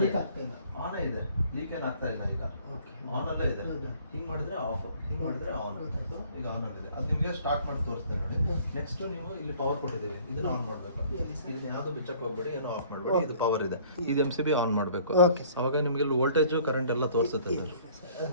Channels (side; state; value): both; inverted; correlation -0.55